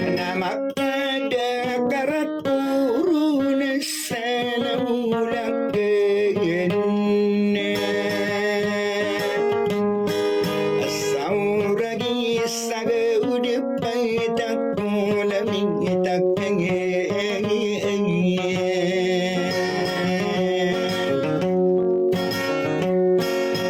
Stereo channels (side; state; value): both; identical; correlation 1.00